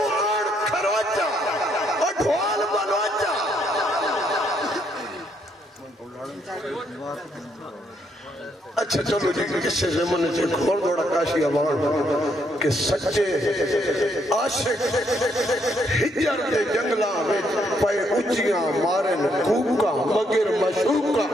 کھروچا اور ڈھول بلوچا اچھا چلو جی کسے زمانے سے کھول دوڑا کاشی امان کہ سچے عاشق ہجر دے جنگلہ میں پائے اچیاں مارن کوکا مگر مشوکا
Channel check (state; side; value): normal; both; correlation 0.73